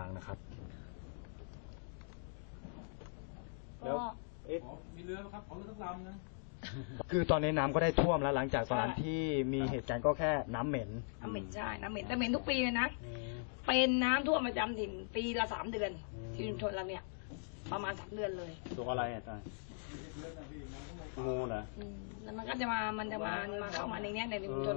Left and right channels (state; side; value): silent; right; digital silence